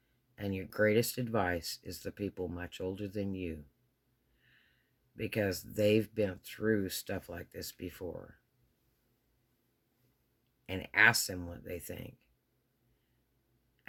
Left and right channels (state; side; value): identical; both; correlation 1.00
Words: and your greatest advice is the people much older than you, because they've been through stuff like this before. And ask them what they think.